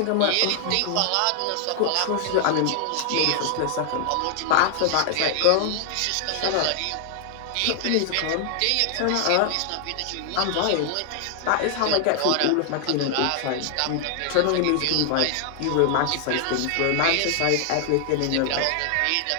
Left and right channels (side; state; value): both; different; correlation 0.00